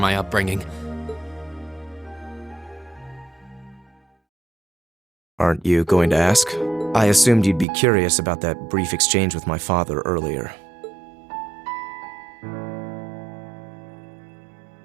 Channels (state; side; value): drops out; left; at 7.7 s